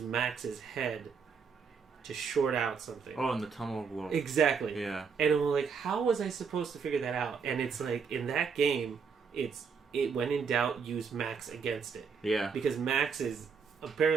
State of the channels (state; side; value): quieter; left; 5.9 dB